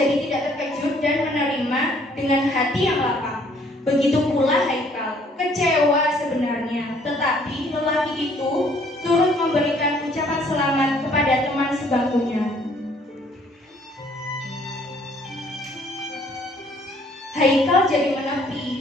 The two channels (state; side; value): normal; both; correlation 0.61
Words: tidak terkejut dan menerima dengan hati yang lapang. Begitu pula Haikal, kecewa sebenarnya, tetapi lelaki itu turut memberikan ucapan selamat kepada teman sebangkunya. Haikal jadi menepi,